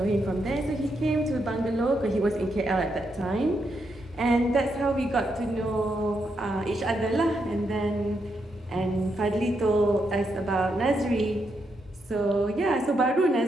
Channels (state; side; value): normal; both; correlation 0.81